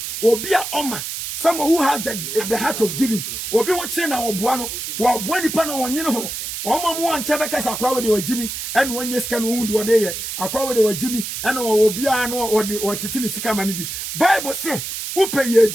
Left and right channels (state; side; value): noise; right; hiss, 6 dB below the sound